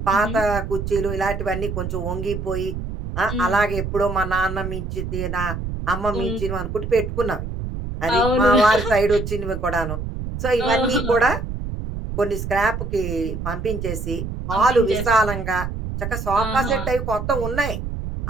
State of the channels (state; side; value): noise; right; rumble, 5 dB below the sound